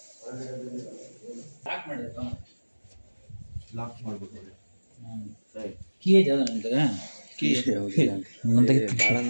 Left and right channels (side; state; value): both; inverted; correlation -1.00